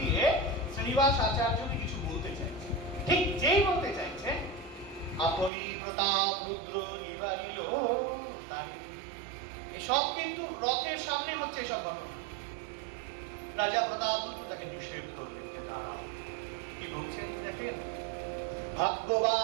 গিয়ে শ্রীনিবাস আচার্যকে কিছু বলতে চাইছে। ঠিক যেই বলতে চাইছে, আপনি প্রতাপ রুদ্র নিবারিল তারে। এসব কিন্তু রথের সামনে হচ্ছে এসব ঘটনা। রাজা প্রতাপ রুদ্র তাকে নিষেধ করলেন যে দাঁড়াও। কি বলছেন দেখেন,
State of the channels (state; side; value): drops out; left; at 5.5 s